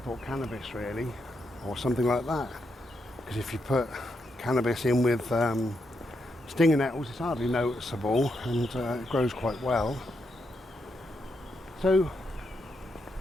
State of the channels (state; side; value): normal; both; correlation 0.82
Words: cannabis really, or something like that. Because if you put cannabis in with stinging nettles, it's hardly noticeable and it grows quite well. So